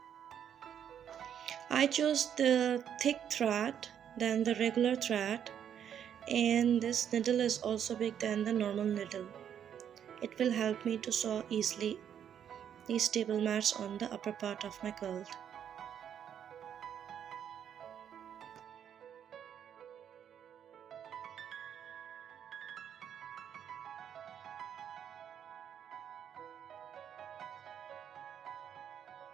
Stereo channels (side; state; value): left; quieter; 9.0 dB